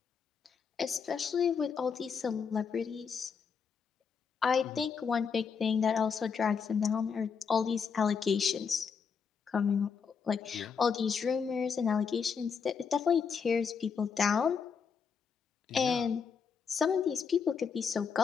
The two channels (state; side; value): quieter; right; 6.1 dB